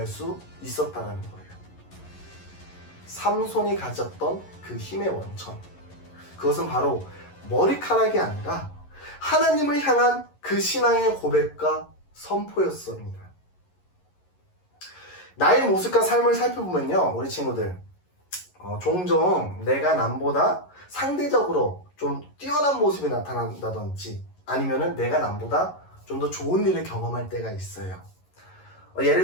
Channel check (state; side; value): late; right; 11 ms